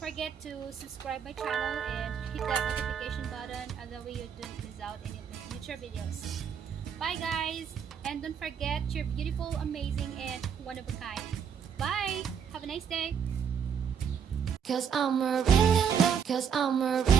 to subscribe my channel and hit that notification button, that way you don't miss out any of my future videos. Bye guys, and don't forget, you're beautiful, amazing, and one of a kind. Bye, have a nice day. Cause I'm really in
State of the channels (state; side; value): quieter; left; 7.5 dB